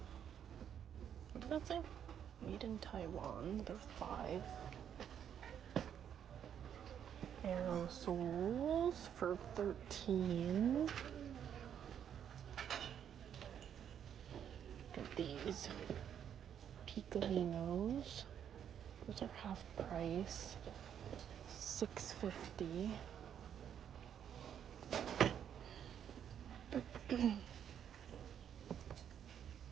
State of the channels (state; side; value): quieter; left; 9.0 dB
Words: What did that say? Made in Taiwan. They're $5. Aerosols for $13. Get these Picolinos. Those are half price. $6.50. Some